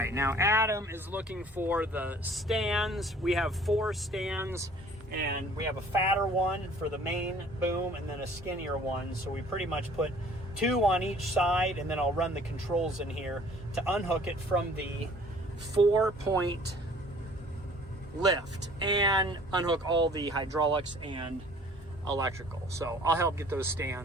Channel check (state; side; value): normal; both; correlation 0.53